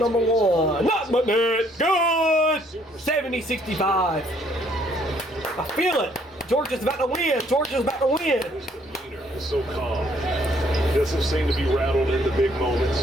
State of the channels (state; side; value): normal; both; correlation 0.65